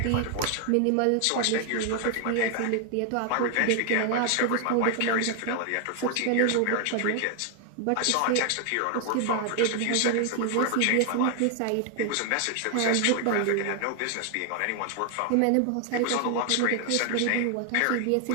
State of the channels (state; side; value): different; both; correlation 0.00